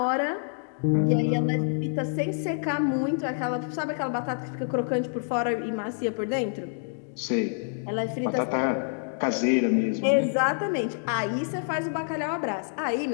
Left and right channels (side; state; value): right; silent; digital silence